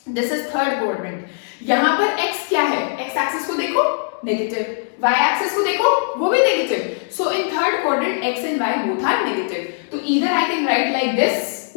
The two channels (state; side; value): silent; right; digital silence